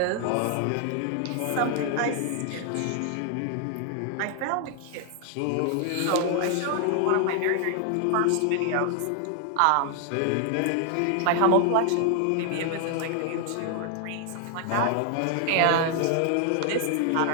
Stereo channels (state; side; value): different; both; correlation 0.00